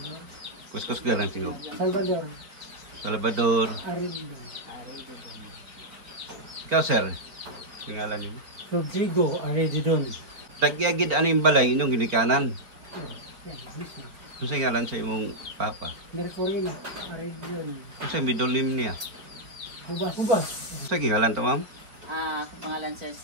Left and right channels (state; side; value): late; left; 4.6 ms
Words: Kuskus galang tingog. Salvador. Salvador. Arindo. Ikaw, sir. Ngalan niyo? Rodrigo Aredidon. Tagyagid ano yung balay inyong ginikanan? Yan, mismo. Unsa ngalan sa imong papa? Mercurino Aredidon. Unsa middle name niya? Hubas. Hubas. Unsa ngalan to, ma'am? Akong pangalan sir